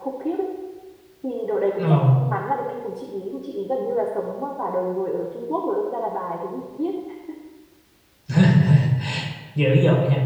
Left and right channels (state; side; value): identical; both; correlation 1.00